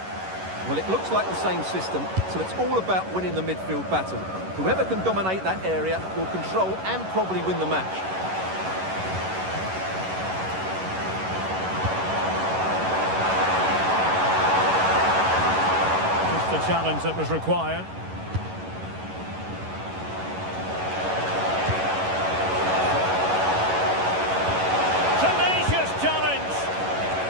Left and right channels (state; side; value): late; left; 11 ms